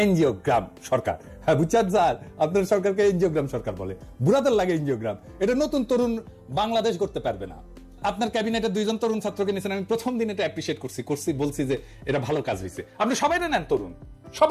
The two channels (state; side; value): identical; both; correlation 1.00